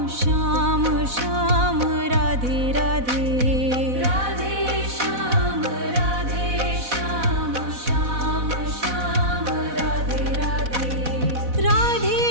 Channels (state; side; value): late; left; 4.1 ms